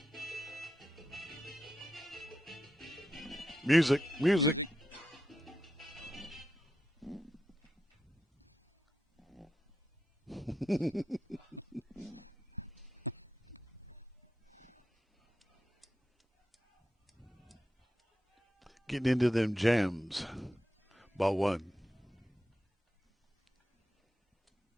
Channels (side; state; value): both; normal; correlation 0.87